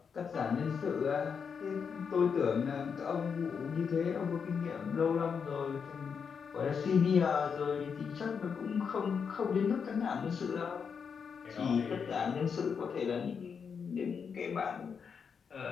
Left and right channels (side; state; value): right; quieter; 6.4 dB